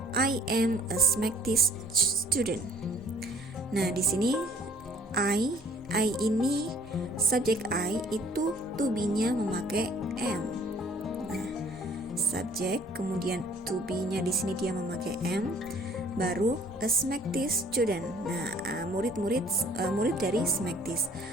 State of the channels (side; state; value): both; normal; correlation 0.54